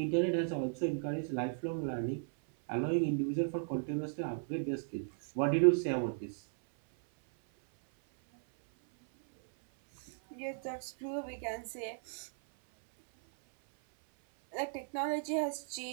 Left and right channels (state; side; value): silent; left; 54 dB below the other